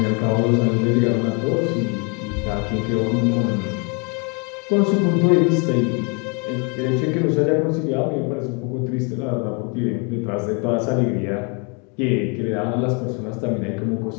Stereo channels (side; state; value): right; quieter; 34.2 dB